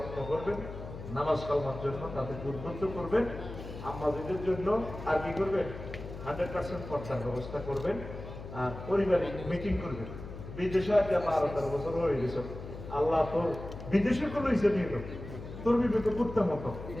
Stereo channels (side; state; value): left; noise; hum, 11 dB below the sound